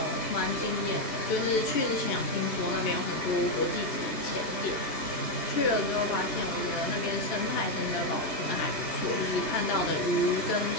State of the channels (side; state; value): right; late; 2.8 ms